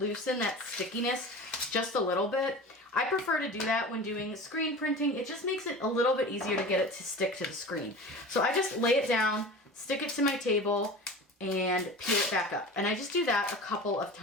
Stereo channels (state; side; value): normal; both; correlation 0.34